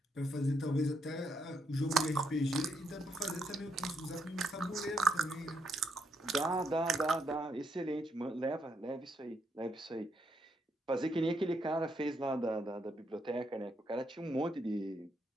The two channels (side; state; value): both; normal; correlation 0.76